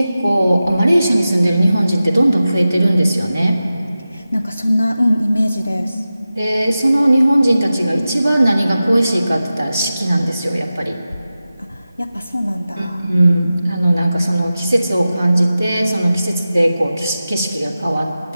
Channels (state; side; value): inverted; both; correlation -0.94